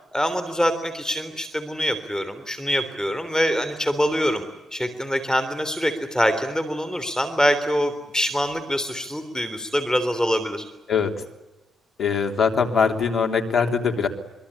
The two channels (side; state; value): both; normal; correlation 0.85